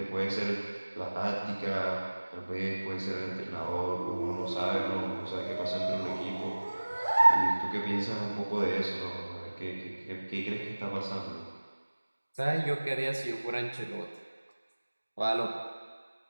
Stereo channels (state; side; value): inverted; both; correlation -1.00